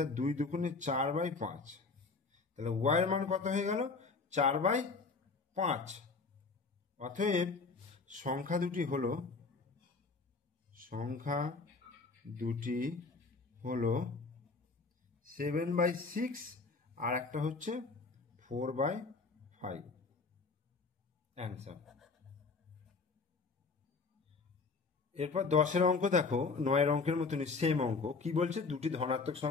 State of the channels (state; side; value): quieter; right; 4.3 dB